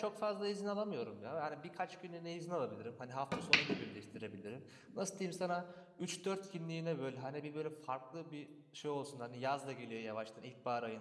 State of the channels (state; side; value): identical; both; correlation 1.00